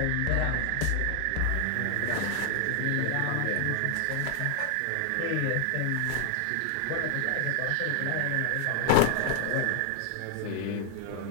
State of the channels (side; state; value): both; different; correlation 0.00